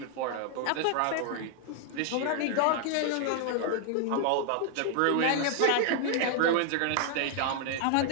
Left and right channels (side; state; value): both; different; correlation 0.00